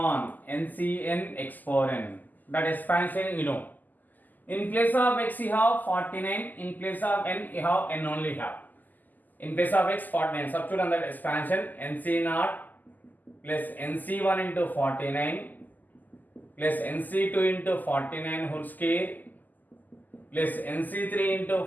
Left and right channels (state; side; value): late; right; 0.084 ms